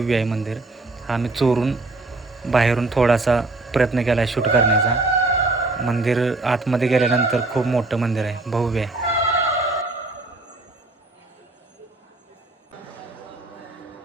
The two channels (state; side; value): quieter; left; 3.1 dB